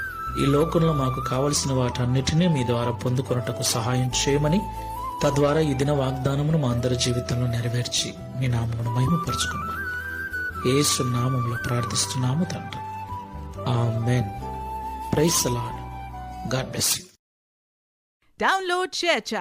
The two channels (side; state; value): both; identical; correlation 1.00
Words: ఈ లోకంలో మాకు కావలసిన వాటన్నిటినీ మీ ద్వారా పొందుకొనుటకు సహాయం చేయమని, తద్వారా ఈ దిన వాగ్దానమును మా అందరి జీవితంలో నెరవేర్చి మీ నామమును మహిమపరచుకున్నామని యేసు నామములో ప్రార్థిస్తున్నాము తండ్రి. Amen. Praise the Lord. God bless you. Download